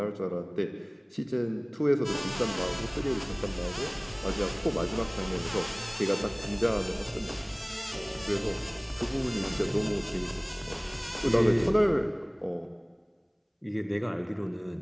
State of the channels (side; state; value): both; identical; correlation 1.00